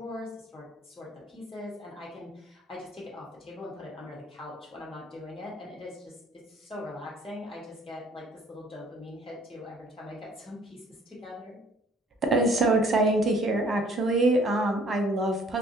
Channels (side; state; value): both; normal; correlation 0.58